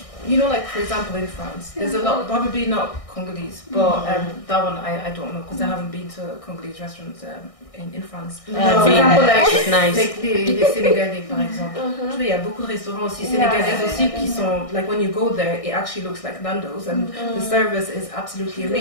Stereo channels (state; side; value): late; right; 1.6 ms